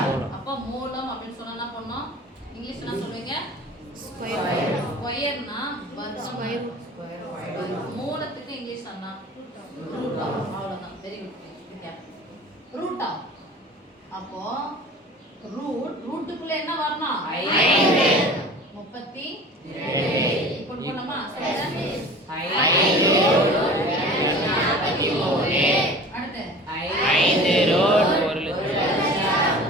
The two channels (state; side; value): normal; both; correlation 0.41